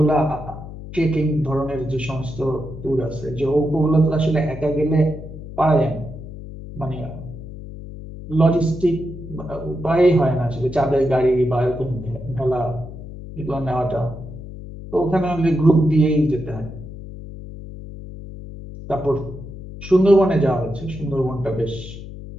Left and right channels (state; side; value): noise; left; hum, 12 dB below the sound